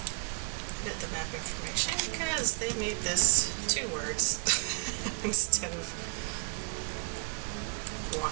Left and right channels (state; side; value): quieter; left; 39.2 dB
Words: edit the map information because they made this 2 words instead of 1.